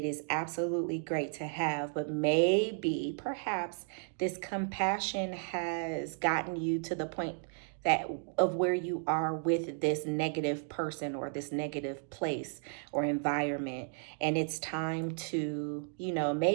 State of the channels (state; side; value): silent; left; 55 dB below the other